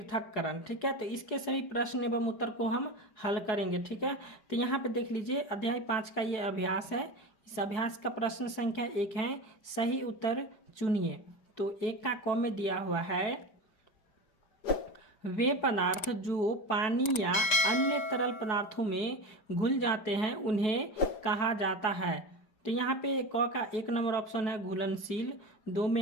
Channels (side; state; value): right; late; 5.0 ms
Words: ठीक है, तो इसके सभी प्रश्न एवं उत्तर को हम हल करेंगे। ठीक है, तो यहाँ पे देख लीजिए अध्याय 5 का ये अभ्यास है। इस अभ्यास का प्रश्न संख्या 1 है, सही उत्तर चुनिए। तो 1 का क में दिया हुआ है, वे पदार्थ जो पानी या अन्य तरल पदार्थों में घुल जाते हैं उन्हें कहा जाता है। तो यहाँ पे क का 1 नंबर ऑप्शन है घुलनशील, 2